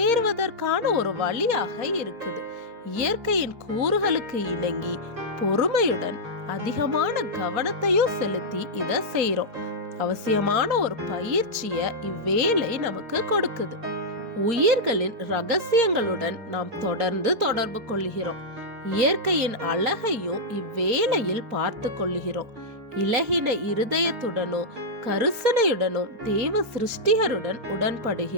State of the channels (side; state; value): left; late; 4.7 ms